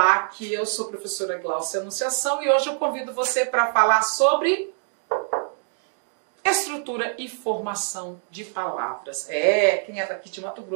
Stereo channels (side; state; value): left; silent; 62 dB below the other